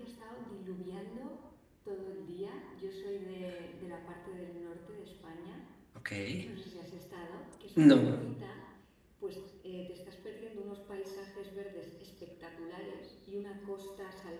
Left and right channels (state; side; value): identical; both; correlation 1.00